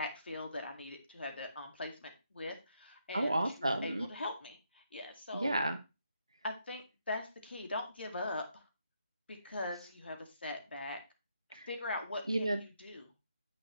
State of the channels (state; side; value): inverted; both; correlation -0.77